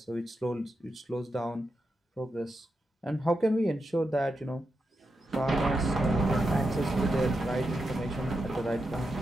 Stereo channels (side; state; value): both; normal; correlation 0.87